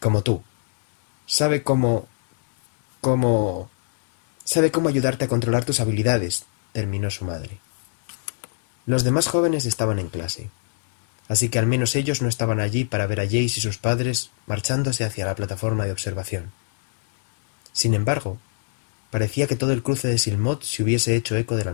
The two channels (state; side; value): silent; right; 64 dB below the other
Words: tú. Sabe cómo... Sabe cómo ayudarte a controlar tus habilidades, terminó su madre. Los demás jóvenes estaban en clase, así que al menos ellos no estaban allí para ver a Jace y sus padres marchándose hacia la plataforma de observación. Sin embargo, parecía que todo el cruce de Silmot se hubiese hecho eco de la